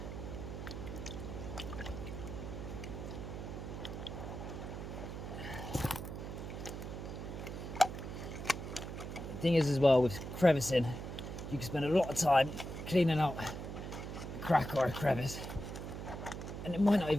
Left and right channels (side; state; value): right; noise; hum, 7 dB below the sound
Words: The thing is as well with crevicing, you can spend a lot of time cleaning out a crack or a crevice and it might not